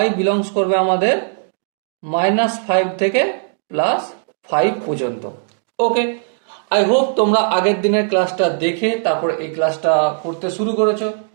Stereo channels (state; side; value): silent; left; digital silence